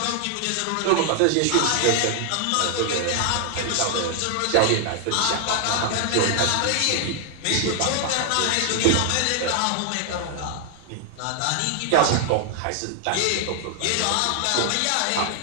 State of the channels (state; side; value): different; both; correlation 0.00